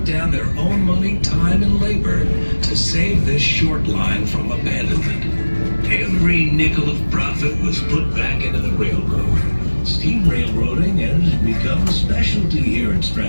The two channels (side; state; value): both; inverted; correlation -1.00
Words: down their own money, time, and labor to save this short line from abandonment. Every nickel of profit was put back into the railroad. Steam railroading has become a specialty here in